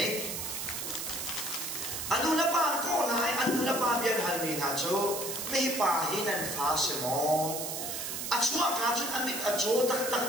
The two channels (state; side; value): noise; right; hiss, 4 dB below the sound